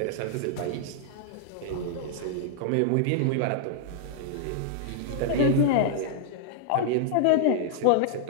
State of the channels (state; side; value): different; both; correlation -0.01